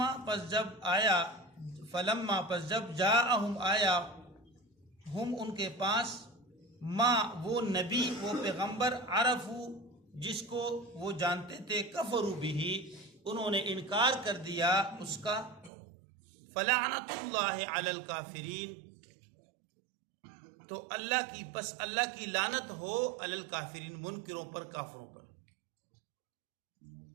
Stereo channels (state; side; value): drops out; left; at 15.7 s